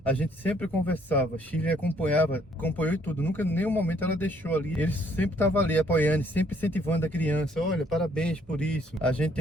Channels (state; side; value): normal; both; correlation 0.65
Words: A gente sempre conversava, Shirley acompanhou e tudo, nunca, em nenhum momento ela deixou ali, ele sempre estava ali apoiando, sempre incentivando a criança, olha, parabéns por isso. A gente